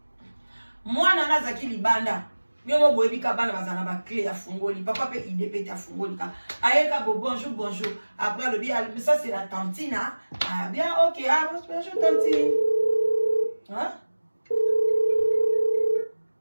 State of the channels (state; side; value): inverted; both; correlation -1.00